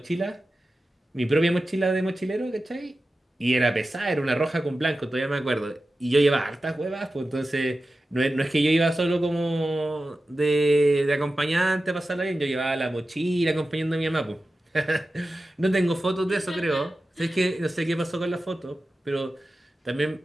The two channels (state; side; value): normal; both; correlation 0.93